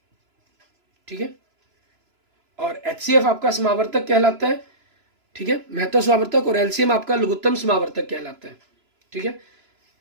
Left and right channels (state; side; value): late; left; 3.0 ms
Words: ठीक है। और HCF आपका समावर्तक कहलाता है, ठीक है, महत्व समावर्तक, और LCM आपका लघुत्तम समावर्तक कहलाता है, ठीक है,